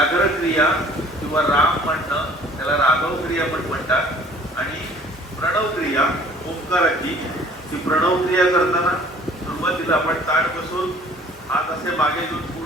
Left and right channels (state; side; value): normal; both; correlation 0.52